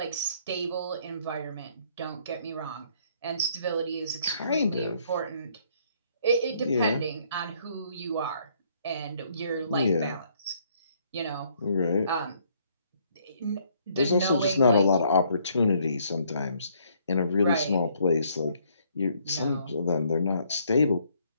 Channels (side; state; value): both; inverted; correlation -0.66